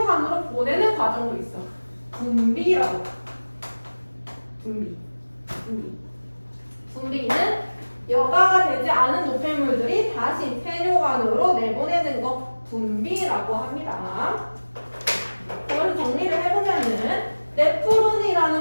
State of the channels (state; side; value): inverted; both; correlation -1.00